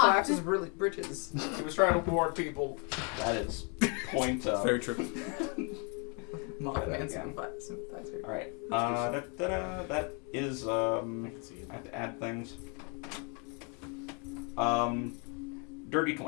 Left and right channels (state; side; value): quieter; right; 35.8 dB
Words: collapses bridges. He was trying to warn people. That is point up. Very true. Mothman sympathizer. All right. That is I have to add things. Dirty